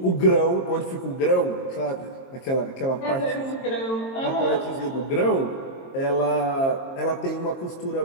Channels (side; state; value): right; late; 22 ms